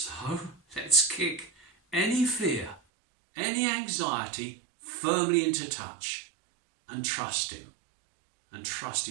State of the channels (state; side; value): drops out; left; at 2.8 s